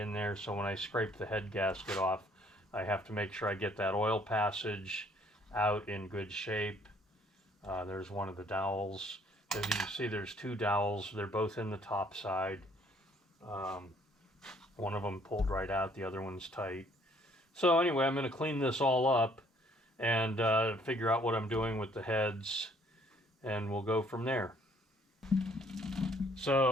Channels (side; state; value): both; normal; correlation 0.62